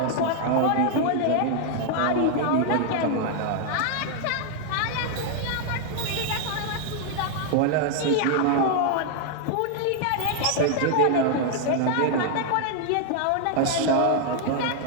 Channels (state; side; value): different; both; correlation 0.00